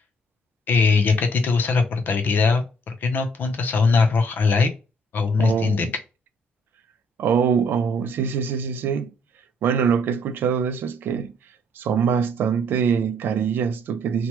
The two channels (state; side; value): normal; both; correlation 0.65